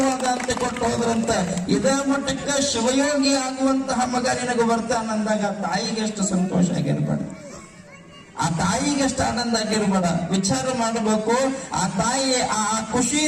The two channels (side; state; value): both; identical; correlation 1.00